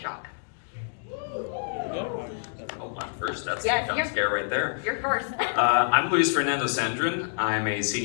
Oh, I'm first. That's Yes, the jump scare right there. You're first. I'm Luis Fernando Sandrin. I'm a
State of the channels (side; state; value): right; silent; digital silence